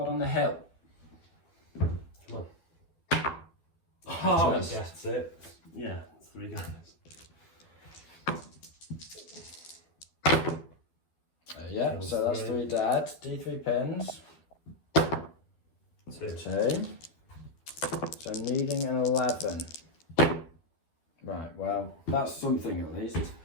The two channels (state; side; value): late; right; 12 ms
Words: on the hill. Come on. Oh, that's it. Yeah, it's 3 guys. Yeah, so that's 3 dead. D3 pins. 2. So needing an 11. Right, well, that's something at least.